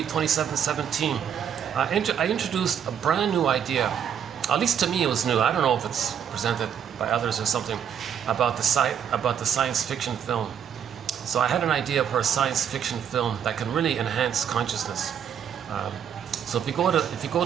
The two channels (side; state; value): left; quieter; 8.5 dB